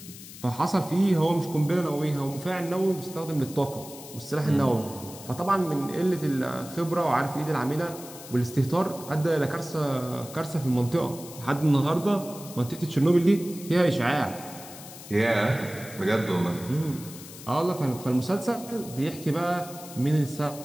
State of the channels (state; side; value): noise; left; hiss, 15 dB below the sound